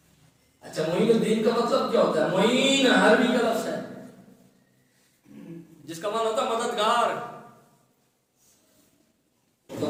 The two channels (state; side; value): identical; both; correlation 1.00